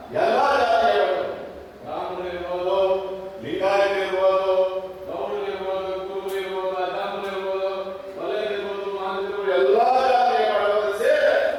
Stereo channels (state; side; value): identical; both; correlation 1.00